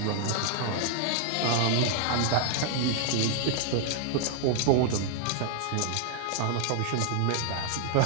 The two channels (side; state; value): both; different; correlation 0.00